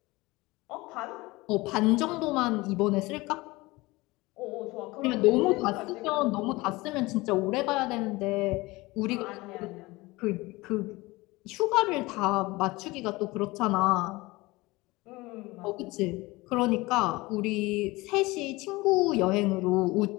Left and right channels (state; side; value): quieter; right; 21.5 dB